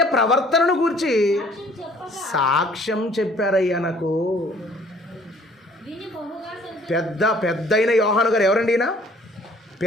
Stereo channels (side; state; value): both; normal; correlation 0.56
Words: ప్రవర్తనను గురించి సాక్ష్యం చెప్పారయ్యా నాకు. పెద్దయిన యోహాను గారు ఎవరండి?